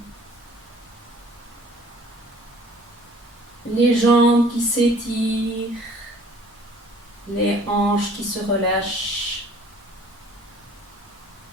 Les jambes qui s'étirent, les hanches qui se relâchent.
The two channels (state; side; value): normal; both; correlation 0.53